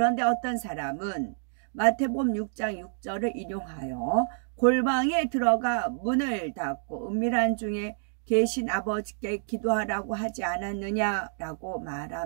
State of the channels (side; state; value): left; silent; digital silence